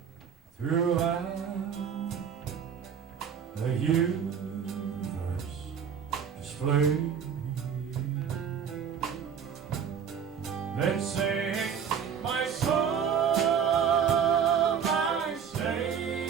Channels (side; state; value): left; quieter; 7.5 dB